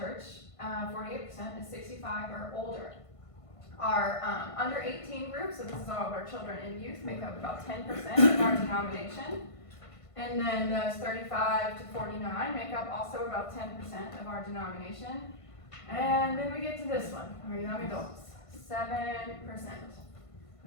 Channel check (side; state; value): right; late; 1.5 ms